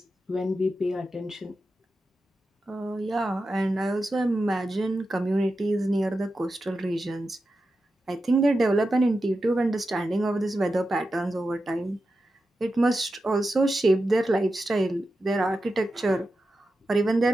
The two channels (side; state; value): both; normal; correlation 0.90